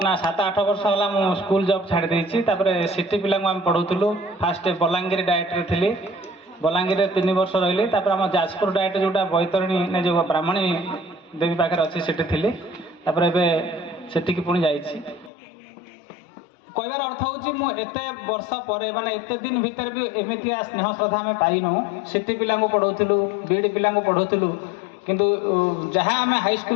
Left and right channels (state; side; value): drops out; right; at 15.3 s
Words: ना 7-8 वर्ष है मु स्कूल जॉब छाड़ देछि तापर सिटी पिला आम पढ़ाऊलु फास्ट बलांगीर डायरेक्टर थी बलांगीर 3 वर्ष रही तापर आम जाजपुर डायरेक्ट जोटा बैतरणी ने जो ब्राह्मणी देवी पाखे अच्छी सेठी थी तापर एबे सेठी पुणी जाइछि कहबार अर्थ हूँ एते वर्ष पर माने एते दिन भीतर भी एमती स्नेह श्रद्धा आम पाइनु सिटी पिला पढ़ाऊलु बीडी पिला पढ़ाऊलु किंतु जहाँ आम